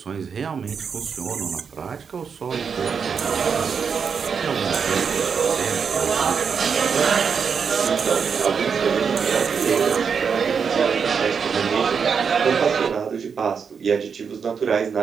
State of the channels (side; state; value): left; quieter; 6.3 dB